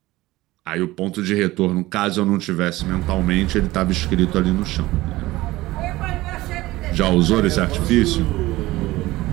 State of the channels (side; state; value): left; quieter; 18.3 dB